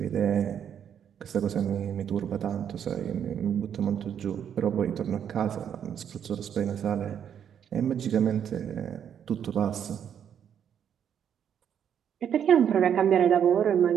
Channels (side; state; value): left; quieter; 8.7 dB